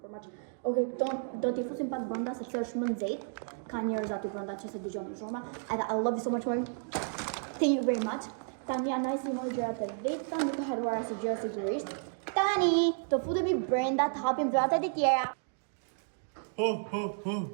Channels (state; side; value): silent; left; 56 dB below the other